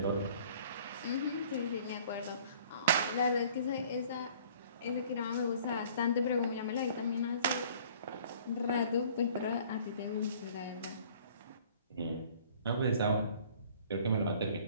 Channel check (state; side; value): inverted; both; correlation -0.53